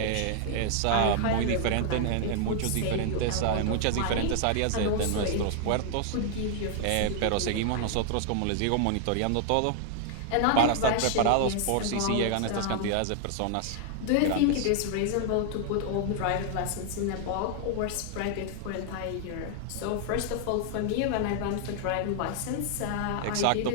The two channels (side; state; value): both; different; correlation 0.00